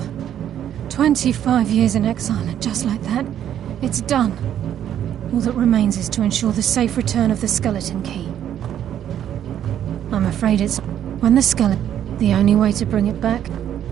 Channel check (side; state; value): left; quieter; 10.4 dB